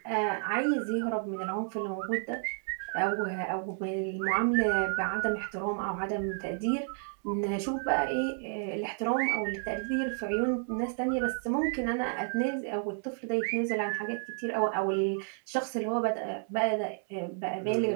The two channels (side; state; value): left; silent; 57 dB below the other